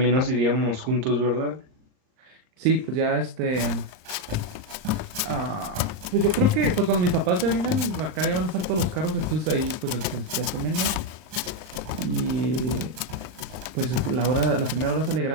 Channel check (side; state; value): left; late; 38 ms